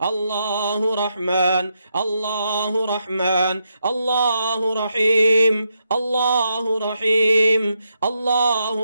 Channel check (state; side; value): inverted; both; correlation -0.82